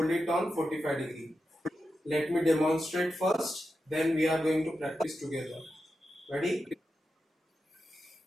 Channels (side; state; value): both; normal; correlation 0.89